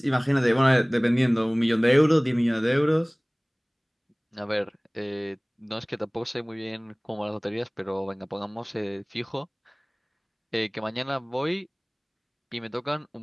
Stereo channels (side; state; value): both; identical; correlation 1.00